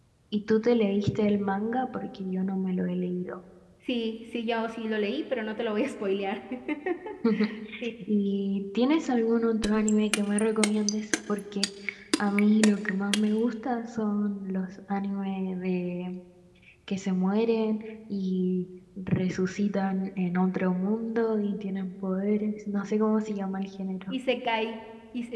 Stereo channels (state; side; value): identical; both; correlation 1.00